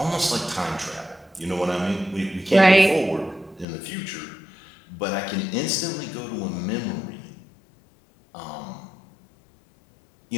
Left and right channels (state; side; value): drops out; right; at 3.7 s